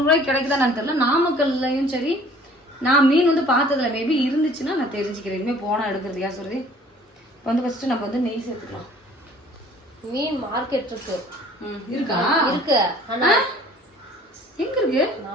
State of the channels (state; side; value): normal; both; correlation 0.52